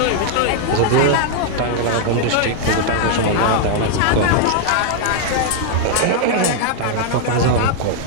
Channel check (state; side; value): different; both; correlation 0.00